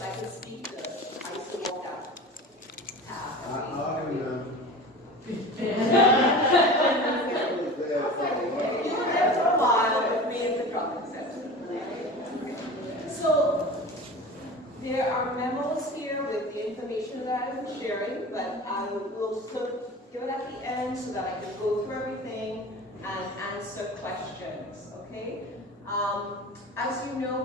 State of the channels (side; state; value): both; normal; correlation 0.35